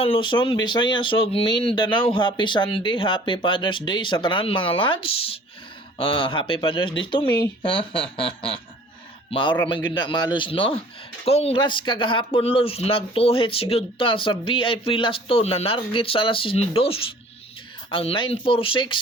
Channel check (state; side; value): normal; both; correlation 0.50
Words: Luzon, Visayas ug Mindanao. Happy Sunday, Happy Father's Day sa tanan mga lads. Happy Father's Day to me. Maura man gyud na malos no. Congrats kagahapon Luz, nagtuhit sigud ta sa VIP last to na narget sa alas 2. Ang